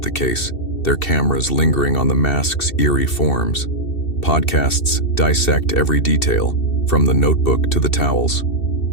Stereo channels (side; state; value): right; late; 2.7 ms